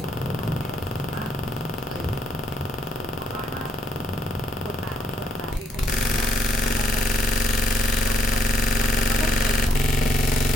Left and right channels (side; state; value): both; normal; correlation 0.72